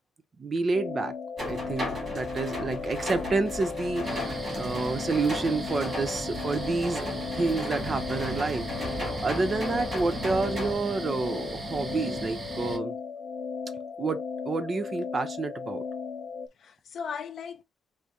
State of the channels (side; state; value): both; normal; correlation 0.82